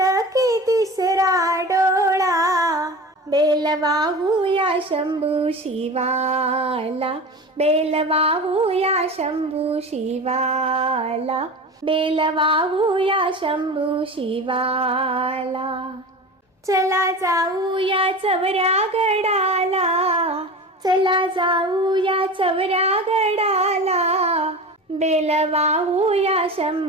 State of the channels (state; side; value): normal; both; correlation 0.31